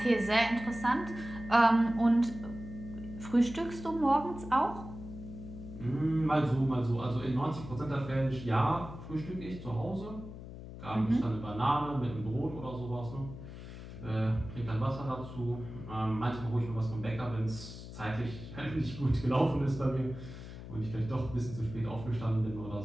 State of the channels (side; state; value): left; noise; hum, 12 dB below the sound